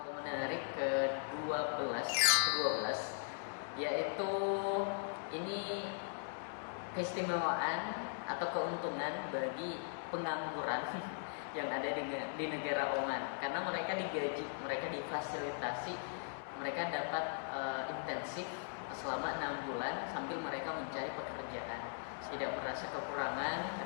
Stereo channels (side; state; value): right; silent; digital silence